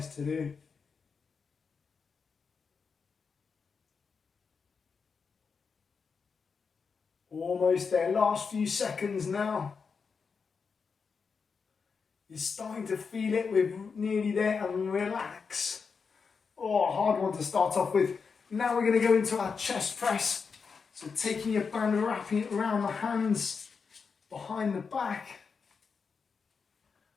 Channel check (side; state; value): right; quieter; 5.5 dB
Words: to do. Almost there, last few seconds now. You're starting to feel it, we're nearly there, and relax. Oh, hard one to start off with. Now we're going to go into our chest press. So taking your band and wrapping it around the hands, behind the back,